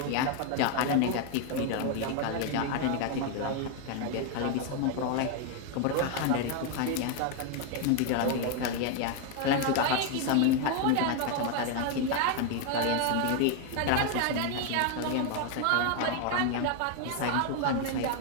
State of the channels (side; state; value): both; different; correlation 0.01